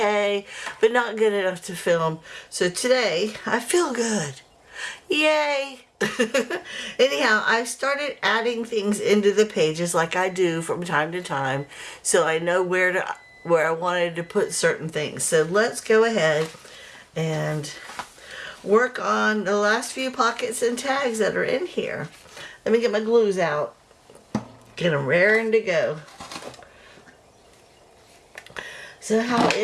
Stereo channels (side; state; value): both; identical; correlation 1.00